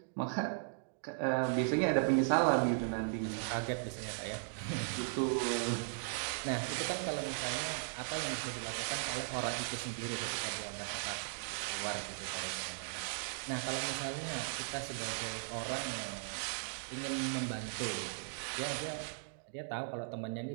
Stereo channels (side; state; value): left; silent; digital silence